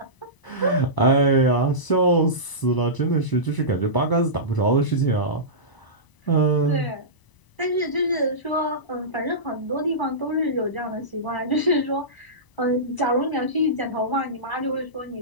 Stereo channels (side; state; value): right; late; 1.0 ms